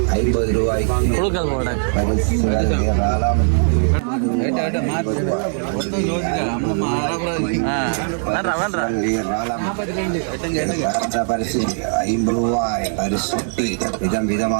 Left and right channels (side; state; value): left; silent; digital silence